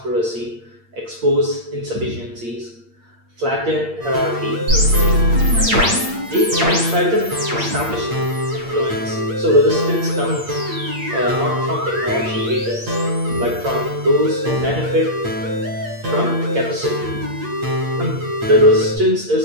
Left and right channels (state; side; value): late; left; 8.7 ms